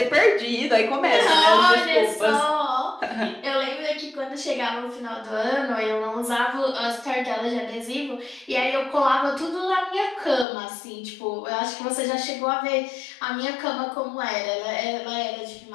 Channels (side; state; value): right; drops out; at 10.5 s